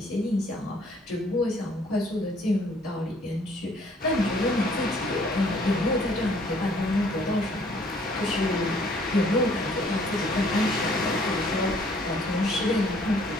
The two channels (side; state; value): both; normal; correlation 0.60